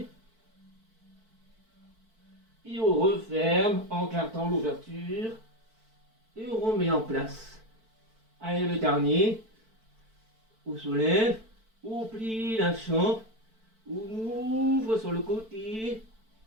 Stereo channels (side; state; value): left; late; 4.5 ms